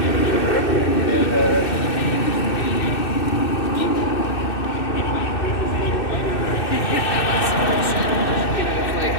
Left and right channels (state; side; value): late; right; 2.6 ms